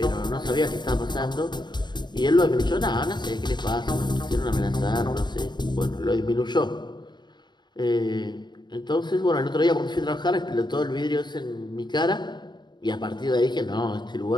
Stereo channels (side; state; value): right; late; 0.21 ms